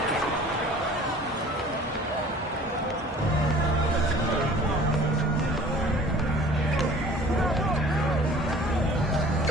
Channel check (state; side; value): normal; both; correlation 0.48